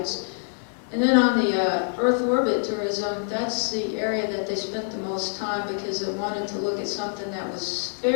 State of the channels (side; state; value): right; silent; 61 dB below the other